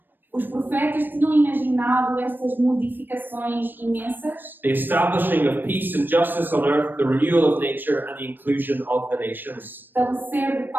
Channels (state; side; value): late; left; 0.093 ms